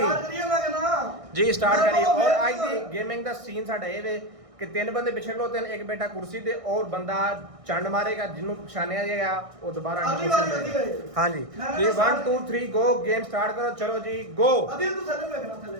करिए मैं कहना ਜੀ ਸਟਾਰਟ ਕਰੀਏ ਔਰ ਅੱਜ ਦੀ ਗੇਮਿੰਗ ਦਾ ਸੀਨ ਸਾਡਾ ਇਹ ਵੇ कि तीन बंदे पिछले खलोते हैं एक बेटा कुर्सी दे और बंदा चंड मारेगा जिन्हों पछानिया जाएगा वो दोबारा अगली बारी होती है हाँ जी जी 1 2 3 गो गेम स्टार्ट करो चलो जी गो अदिल तू थले में रखना थले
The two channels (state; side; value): late; left; 1.6 ms